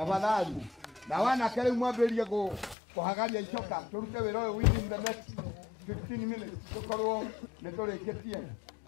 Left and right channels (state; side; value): drops out; right; at 2.8 s